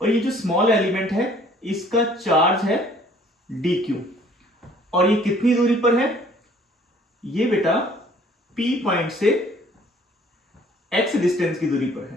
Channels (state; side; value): normal; both; correlation 0.56